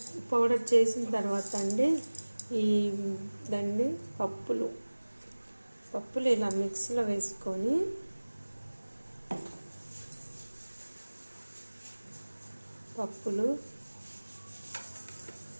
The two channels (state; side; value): inverted; both; correlation -1.00